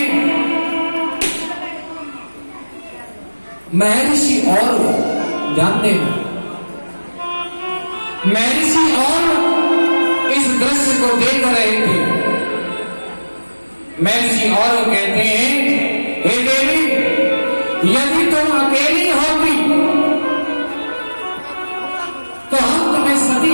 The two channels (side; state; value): both; inverted; correlation -1.00